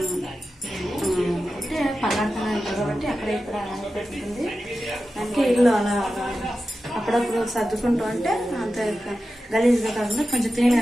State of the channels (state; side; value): normal; both; correlation 0.92